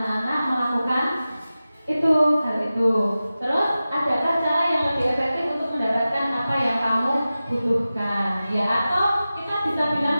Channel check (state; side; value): inverted; both; correlation -0.95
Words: melakukan hal itu. Terus adakah cara yang lebih efektif untuk mendapatkan apa yang kamu butuhkan? Ya, atau kita bisa bilang